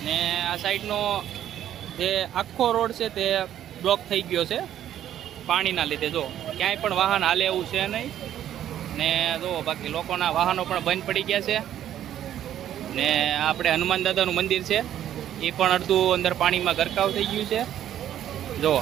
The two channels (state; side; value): quieter; left; 11.2 dB